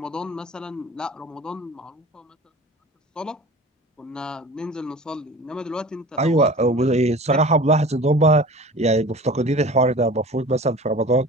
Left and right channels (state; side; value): normal; both; correlation 0.40